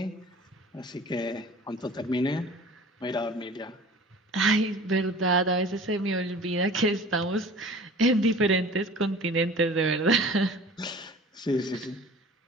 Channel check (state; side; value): normal; both; correlation 0.43